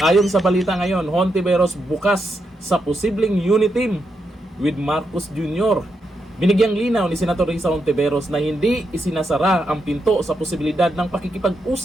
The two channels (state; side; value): normal; both; correlation 0.83